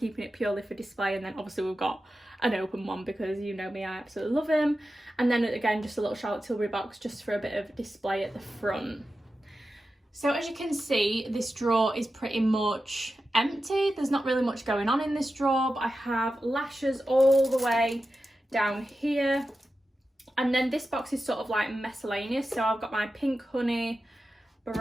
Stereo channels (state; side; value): normal; both; correlation 0.92